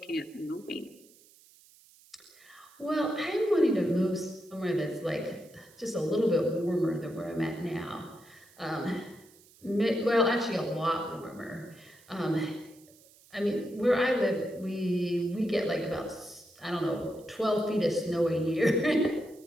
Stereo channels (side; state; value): right; noise; hiss, 26 dB below the sound